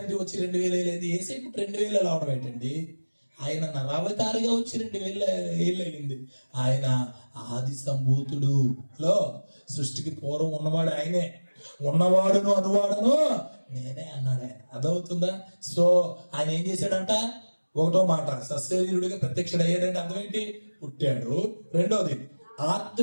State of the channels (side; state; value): both; inverted; correlation -1.00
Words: వచ్చి 2000 అయింది. యేసయ్య పుట్టి 2000 అవడం ఏంటండి? ఆయన నరావతారిగా వచ్చి 2000 ఏళ్ళు అయింది. ఆయన ఆది సంభూతుడు సృష్టికి పూర్వం ఉన్నవాడు ఆయనే. ఉన్నవాడును అనువాడును నేనే అన్నాడు ఆయన. అర్థమవుతుందా? సో ఆయన ఏం చేశాడంట? ఒకటో మాట, సశరీరుడిగా ప్రత్యక్షుడయ్యాడంటే అర్థం ఏంటి? పుట్టాడు. రెండోది,